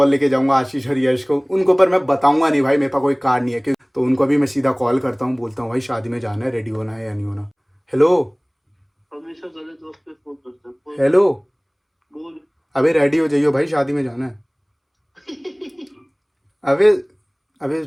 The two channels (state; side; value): identical; both; correlation 1.00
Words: लेके जाऊंगा, आशीष और यश को। उनको पर मैं बताऊंगा नहीं भाई, मेरे पास कोई कार नहीं है, तो उनको भी मैं सीधा कॉल करता हूँ, बोलता हूँ भाई शादी में जाना है, रेडी होना है या नहीं होना। हेलो हेलो, अबे रेडी हो जाइयो भाई, शादी में जाना है। अबे अबे